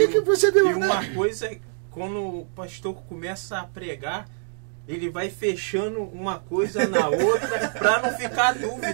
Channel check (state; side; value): silent; left; digital silence